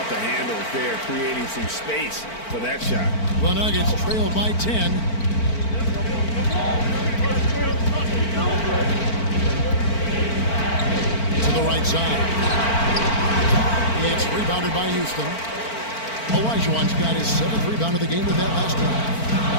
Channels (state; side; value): late; right; 4.5 ms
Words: the handles there, creating some space for that shot? The Nuggets trail by 10. To the right side. It's rebounded by Houston. Olajuwon's got his 7th rebound of the game with that last one.